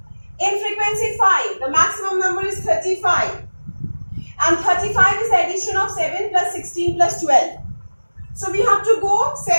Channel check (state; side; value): inverted; both; correlation -1.00